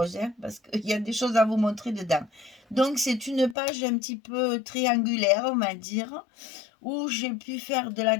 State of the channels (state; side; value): drops out; right; at 3.6 s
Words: hein, parce qu'il y a des choses à vous montrer dedans. Donc, c'est une page un petit peu triangulaire, on va dire, où j'ai pu faire de la